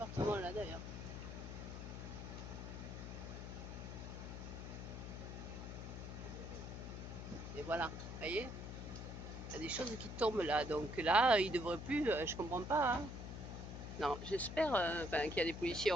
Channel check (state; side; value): noise; left; hum, 8 dB below the sound